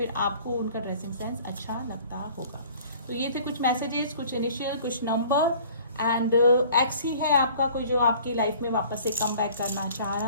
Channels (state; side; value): inverted; both; correlation -0.50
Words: आपको उनका ड्रेसिंग सेंस अच्छा लगता होगा। तो ये थे कुछ मैसेजेस, कुछ इनिशियल, कुछ नंबर। एंड एक्स ही है आपका कोई जो आपकी लाइफ में वापस से कम बैक करना चाह